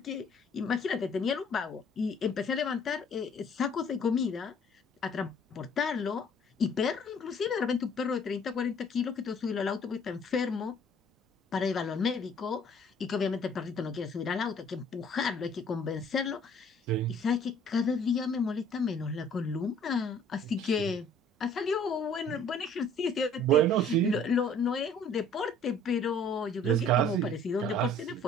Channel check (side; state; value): both; normal; correlation 0.56